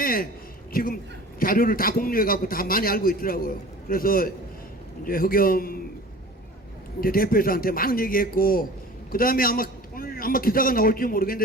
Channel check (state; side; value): normal; both; correlation 0.41